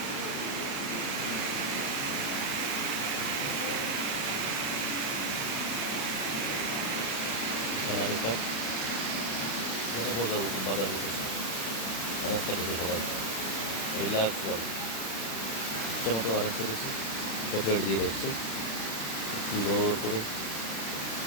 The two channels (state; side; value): late; right; 36 ms